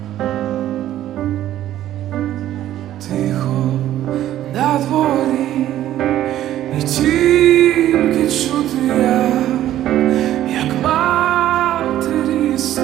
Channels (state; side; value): quieter; left; 12.8 dB